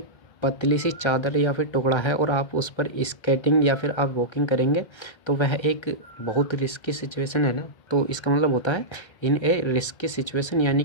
पतली सी चादर या फिर टुकड़ा है और आप उस पर स्केटिंग या फिर आप वॉकिंग करेंगे, तो वह एक बहुत रिस्की सिचुएशन है ना, तो इसका मतलब होता है इन ए रिस्की सिचुएशन, यानी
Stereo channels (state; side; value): late; right; 1.3 ms